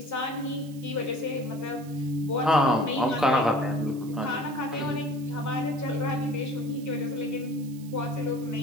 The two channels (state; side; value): noise; right; hiss, 22 dB below the sound